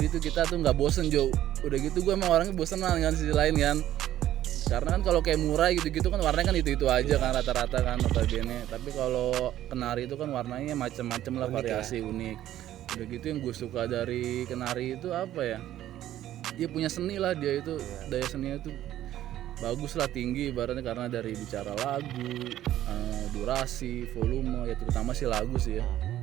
tuh kita tuh nggak bosen Jo. Udah gitu gue emang orangnya bosen lah kan sisi lain kan. Karena kan kalau kayak murai gitu-gitu kan warnanya kan itu aja kan rata-rata kan notabene. Tapi kalau kenari itu kan warnanya macam-macam lah, variasi unik. Udah gitu yang gue suka dari kenari itu apa ya? Dia punya seni lah, dia itu daya seninya tuh bagus lah, tinggi ibaratnya, karena dari bicara lagu, durasi, volume ya, terutama sih lagu sih ya.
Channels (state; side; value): quieter; left; 12.8 dB